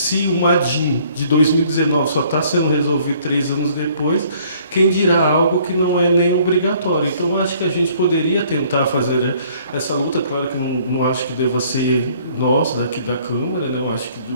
o MADIM de 2019 só está sendo resolvido 3 anos depois, quem dirá algo que não é nem obrigatório. Então, acho que a gente poderia tentar fazer essa luta. Claro que não acho que deva ser nós, daqui da Câmara, né? Eu acho que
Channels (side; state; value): both; inverted; correlation -0.59